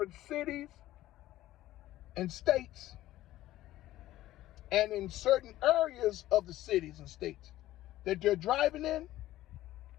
cities and states, and in certain areas of the cities and states that they're driving in,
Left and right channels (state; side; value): quieter; right; 14.9 dB